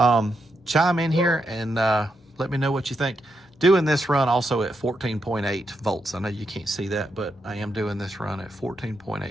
Chime in here and let me know what you think. Doing this run also at 14.8 volts. I know you can't see that, but I am doing this run at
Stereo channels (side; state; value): both; normal; correlation 0.83